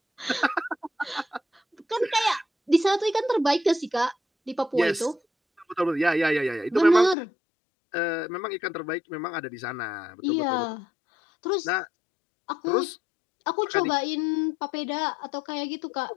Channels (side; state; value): right; drops out; at 7.2 s